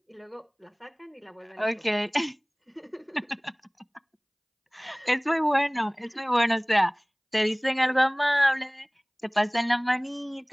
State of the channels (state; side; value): identical; both; correlation 1.00